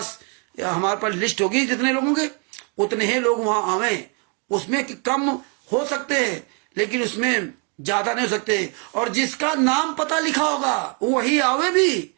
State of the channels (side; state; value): left; quieter; 36.0 dB